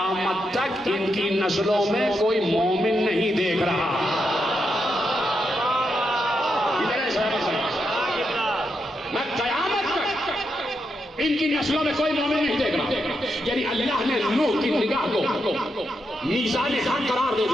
تک ان کی نسلوں میں کوئی مومن نہیں دیکھ رہا۔ میں قیامت تک ان کی نسلوں میں کوئی مومن نہیں دیکھ رہا، یعنی اللہ نے نوح کی نگاہ کو میزان حق قرار دے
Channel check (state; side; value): normal; both; correlation 0.84